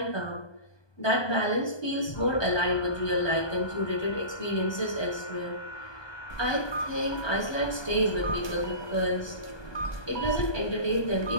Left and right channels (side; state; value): right; late; 1.2 ms